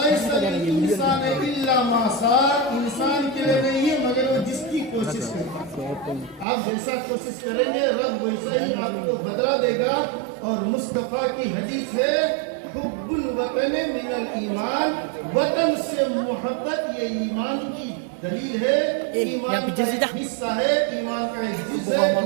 लिल इंसानि इल्ला मा सअ। इंसान के लिए नहीं है मगर वो जिसकी कोशिश करता है। आप जैसा कोशिश करेंगे रब वैसा ही आपको बदला देगा। और मुस्तफा की हदीस है हुब्बुल वतन मिनल ईमान। वतन से मोहब्बत ये ईमान की दलील है, ईमान का एक हिस्सा है, ईमान का एक जुज़ है,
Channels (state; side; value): drops out; left; at 6.5 s